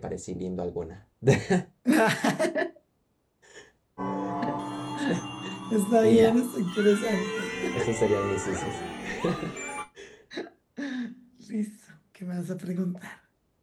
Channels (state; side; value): identical; both; correlation 1.00